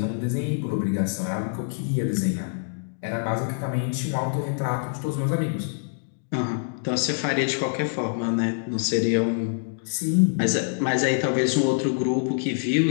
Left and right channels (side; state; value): right; silent; digital silence